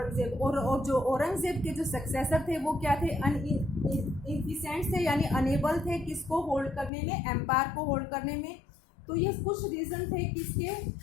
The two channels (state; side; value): drops out; right; at 6.9 s